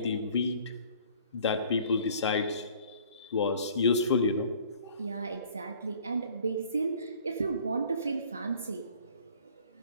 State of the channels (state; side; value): inverted; both; correlation -0.53